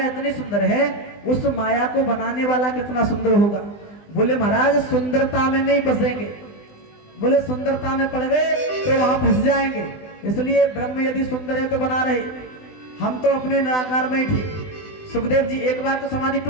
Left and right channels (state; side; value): late; right; 20 ms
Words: इतनी सुंदर है उस माया को बनाने वाला कितना सुंदर होगा। बोले महाराज सुंदरता में नहीं फंसेंगे, बोले सुंदरता में पड़ गए तो वहां फंस जाएंगे। इसलिए ब्रह्म यदि सुंदर है तो बना रहे, हम तो अपने निराकार में ही ठीक। सुखदेव जी एक बार तो समाधि